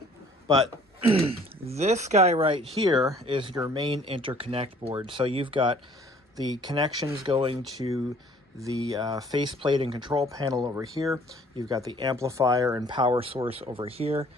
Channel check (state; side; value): normal; both; correlation 0.56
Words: But this guy right here is your main interconnect board. So you've got the connections going to the faceplate and control panel over here. You've got the amplifier and power source over here.